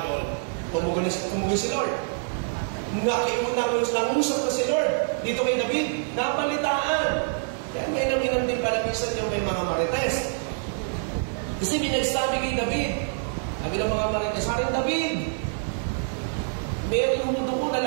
tumugon si Lord. Nangusap na si Lord dito kay David, napalitaan. Kaya may naminang din pala minsan yung may mga marites. Kasi binagsabi kay David, sabi ng mga marites, Haring David, meron mo doon na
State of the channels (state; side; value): silent; left; 59 dB below the other